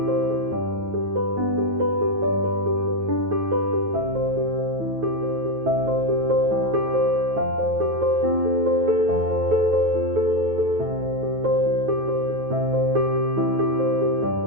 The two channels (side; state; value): left; late; 9.3 ms